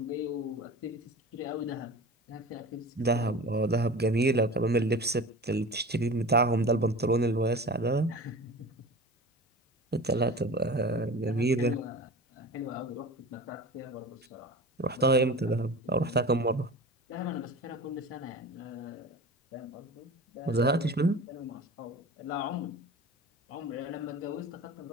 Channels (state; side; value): normal; both; correlation 0.35